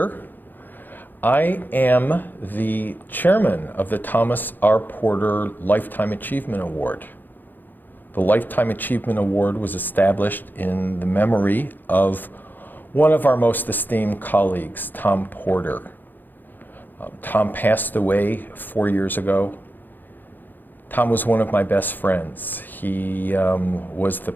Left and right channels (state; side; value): late; right; 0.089 ms